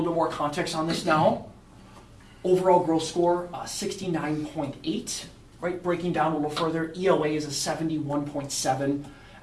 bit more context on this now. Overall growth score, 69.8, right, breaking down a little further, ELA is a 71.7,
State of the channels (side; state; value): both; identical; correlation 1.00